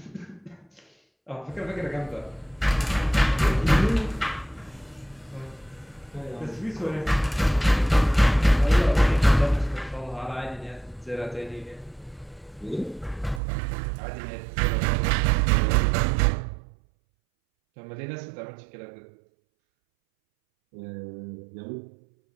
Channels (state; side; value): drops out; left; at 13.4 s